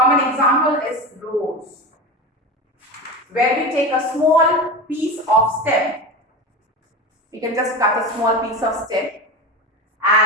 example is rose, where we take a small piece of stem. We can just cut a small piece of stem,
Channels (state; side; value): normal; both; correlation 0.25